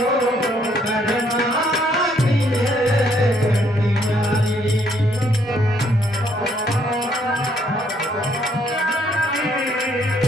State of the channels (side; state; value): both; normal; correlation 0.68